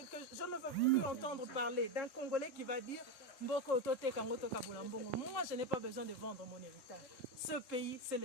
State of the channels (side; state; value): right; late; 3.7 ms